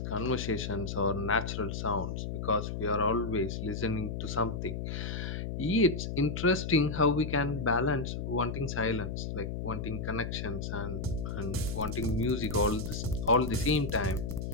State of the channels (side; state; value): left; noise; hum, 4 dB below the sound